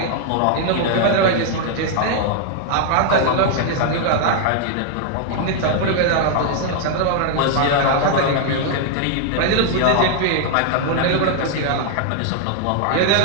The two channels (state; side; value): different; both; correlation 0.00